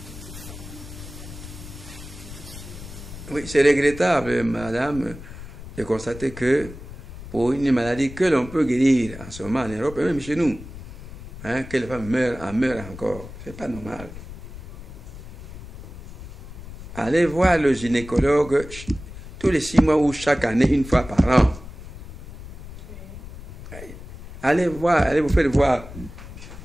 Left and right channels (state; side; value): noise; left; rumble, 14 dB below the sound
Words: Oui, c'est regrettable, madame, de constater que pour une maladie que l'on peut guérir en ce moment en Europe, et même chez nous, que les femmes meurent encore. C'est pas normal. Allez voir le gynécologue tous les 6 mois ou chaque année, 1 fois par an. Allez vous faire voir.